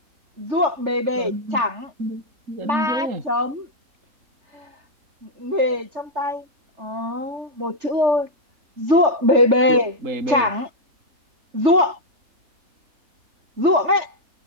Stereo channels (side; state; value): left; late; 3.4 ms